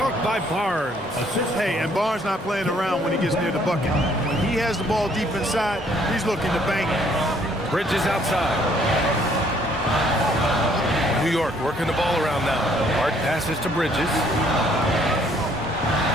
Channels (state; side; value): normal; both; correlation 0.64